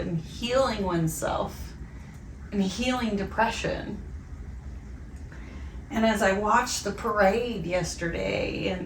healing oneself and healing depression. And as I watched the parade yesterday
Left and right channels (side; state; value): both; identical; correlation 1.00